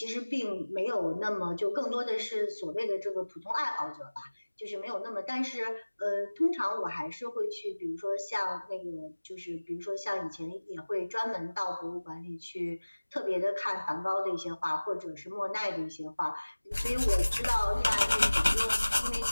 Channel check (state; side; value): inverted; both; correlation -1.00